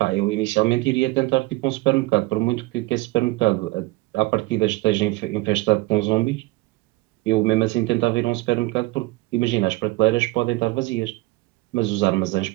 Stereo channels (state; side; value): quieter; left; 20.8 dB